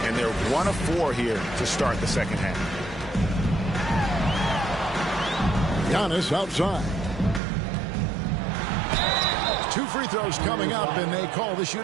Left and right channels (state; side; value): drops out; left; at 7.4 s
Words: And they're 1 of 4 here to start the second half. Giannis outside. 2 free throws coming up, and they call the